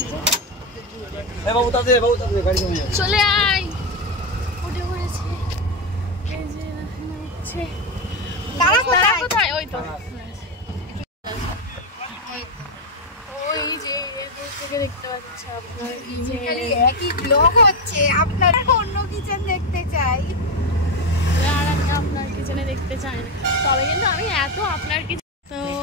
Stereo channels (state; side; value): normal; both; correlation 0.10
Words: চলে আয়, উঠে পড়েছি। এই যে হচ্ছে তারা কোথায়? ওই তো ওই যে দূর থেকে দেখতে পাচ্ছি আপনার একই ব্লগ হচ্ছে। আপনার অন্য কিচেন দেখতে চাই, আর আমি আপনার কিচেনে দেখতে চাই না। তবে কিন্তু আমি এত আপনার কিচেন। তো